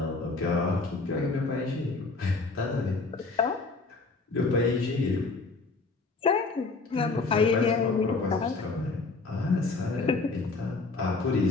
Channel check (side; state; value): right; quieter; 3.9 dB